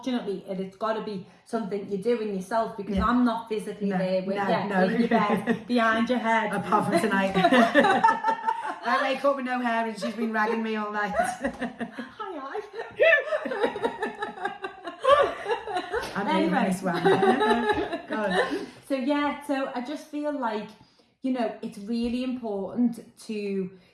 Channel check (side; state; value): both; identical; correlation 1.00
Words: it's got to be something you're doing yourself, because I'm not physically there with you in your bed, behind your head. Apart from tonight. I wake up with no hair and she's been ragging me all night. Hi. Anyway. This one. God. So I just feel like, you know, it's really important to